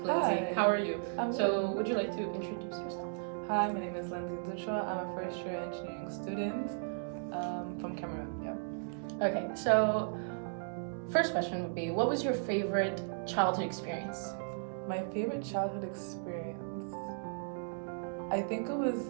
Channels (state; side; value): silent; left; digital silence